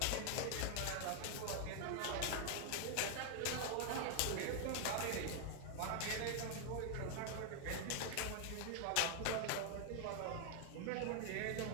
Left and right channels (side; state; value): both; different; correlation 0.00